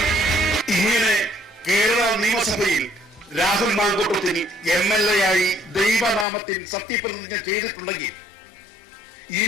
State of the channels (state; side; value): drops out; right; at 6.2 s